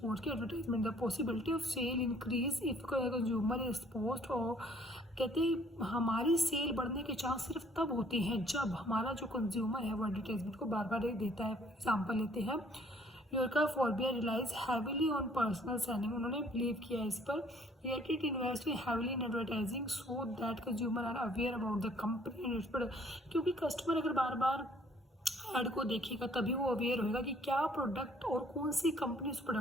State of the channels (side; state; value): both; normal; correlation 0.60